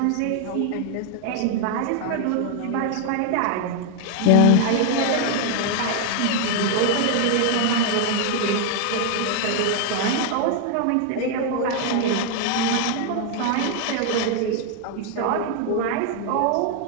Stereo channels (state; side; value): different; both; correlation 0.00